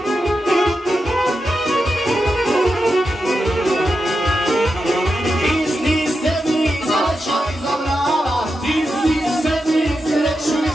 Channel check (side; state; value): both; normal; correlation 0.88